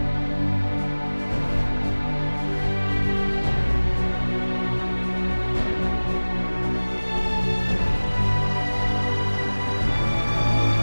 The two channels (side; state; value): both; inverted; correlation -1.00